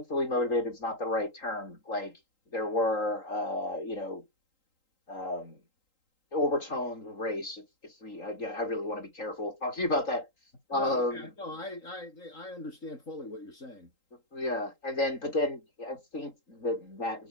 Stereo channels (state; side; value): late; right; 3.8 ms